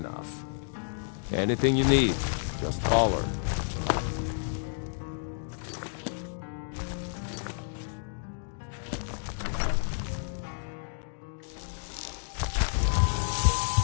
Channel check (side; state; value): right; silent; digital silence